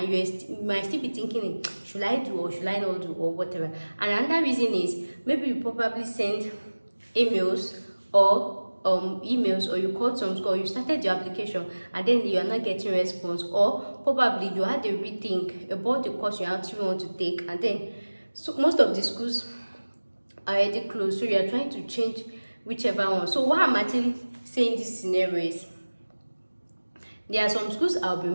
you might still be thinking, should I do or should I not do or whatever. And another reason is maybe you probably send emails or you called some school, you started your application and then you are not getting response, or probably you had a rethink about the course you actually want to take, and then so most of the schools are already closed, so you are trying to change whichever one. So what I'm actually saying this scenario is, there are some schools I'll be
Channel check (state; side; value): inverted; both; correlation -1.00